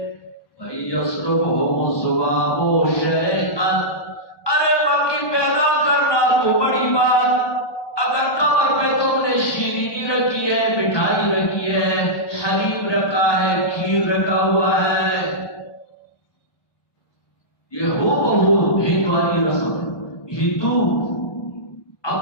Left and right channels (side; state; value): right; late; 1.1 ms